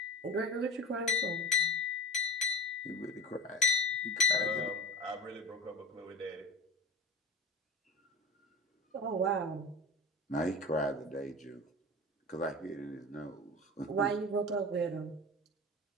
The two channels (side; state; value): both; normal; correlation 0.31